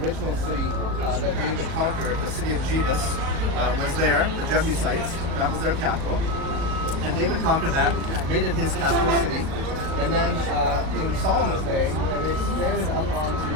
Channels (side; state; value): left; late; 37 ms